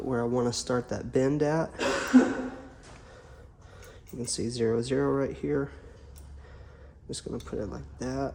where I want to start that bend at. You can see 0, 0 right here. I'm just going to put it like that.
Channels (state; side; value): identical; both; correlation 1.00